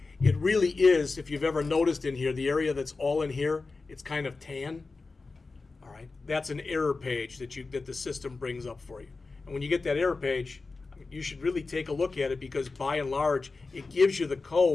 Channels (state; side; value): quieter; right; 3.9 dB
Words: it really is, if you've ever noticed in here, the area that's all in here, it's kind of tan. All right, that's an error page that the system brings up for you. And when you get that error page, you should really take a look at it, because by and large, it gives you the